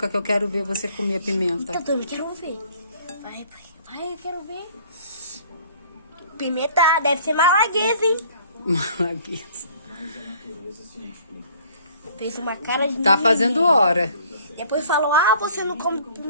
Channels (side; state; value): both; inverted; correlation -0.55